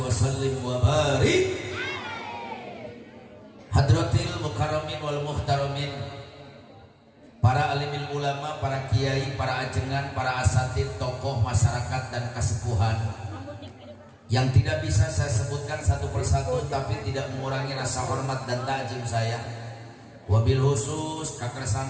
wa sallim wa barik hadratil mukarramin wal muhtaramin, para alimil ulama, para kiai, para ajengan, para asatid, tokoh masyarakat dan kesepuhan yang tidak bisa saya sebutkan satu persatu, tapi tidak mengurangi rasa hormat dan ta'zim saya. Wabil khusus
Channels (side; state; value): both; identical; correlation 1.00